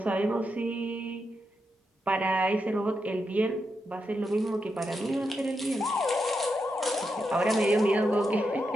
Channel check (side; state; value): both; normal; correlation 0.85